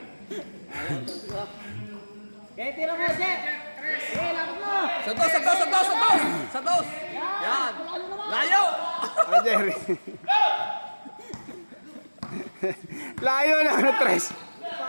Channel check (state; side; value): inverted; both; correlation -1.00